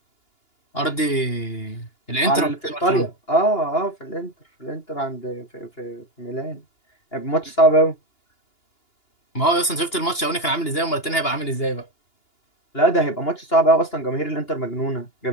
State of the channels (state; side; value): late; right; 2.9 ms